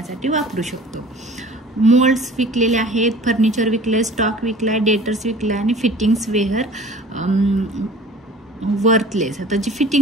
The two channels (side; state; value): both; normal; correlation 0.45